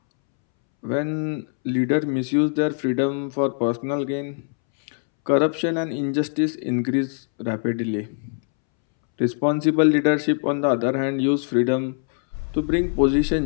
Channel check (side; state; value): right; silent; 64 dB below the other